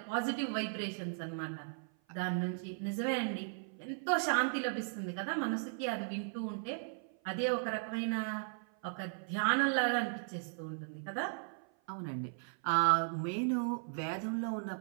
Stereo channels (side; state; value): left; silent; 53 dB below the other